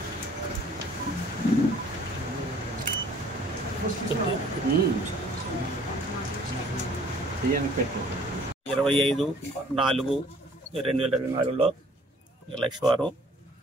పెట్టు 25/4/2024 లక్షవారం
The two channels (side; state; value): both; normal; correlation 0.56